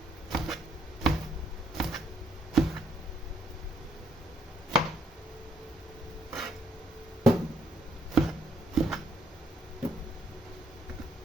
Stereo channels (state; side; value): normal; both; correlation 0.69